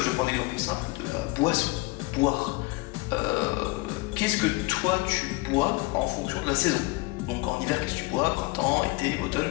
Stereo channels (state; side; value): quieter; right; 24.6 dB